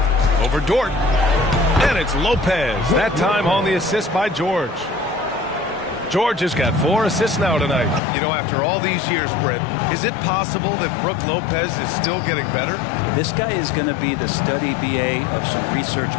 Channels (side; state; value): right; drops out; at 8.0 s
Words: Over Dort, and it's Lopez, that time on the assist by George. George has got 4 assists now tonight. You know, after all these years, Brent, is it possible that Brook Lopez is still getting better? This guy is going to be the study BA of some research